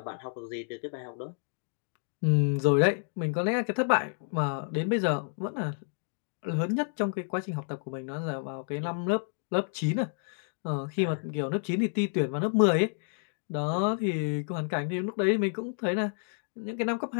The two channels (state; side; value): silent; right; 58 dB below the other